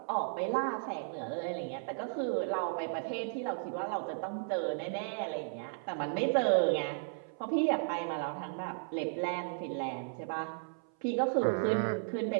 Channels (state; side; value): silent; left; 55 dB below the other